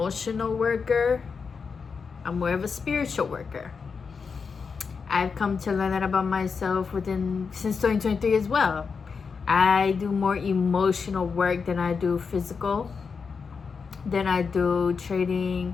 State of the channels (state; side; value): quieter; right; 5.4 dB